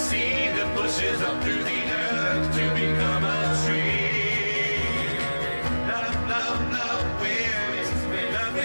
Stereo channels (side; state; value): both; inverted; correlation -1.00